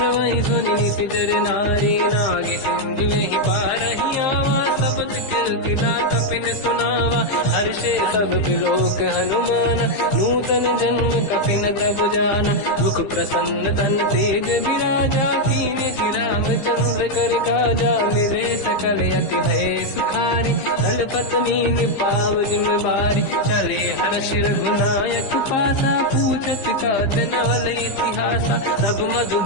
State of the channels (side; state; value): right; late; 15 ms